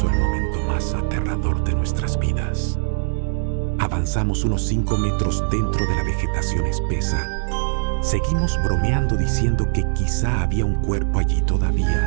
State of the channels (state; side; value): silent; left; digital silence